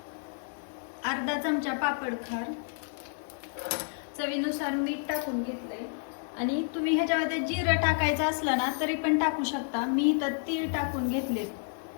अर्धा चमचा पापड खार, चवीनुसार मीठ टाकून घेतलंय आणि तुम्ही ह्याच्यामध्ये जिरं टाकायचं असलं ना तरी पण टाकू शकता. मी इथं तीळ टाकून घेतलेत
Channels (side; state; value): right; silent; 58 dB below the other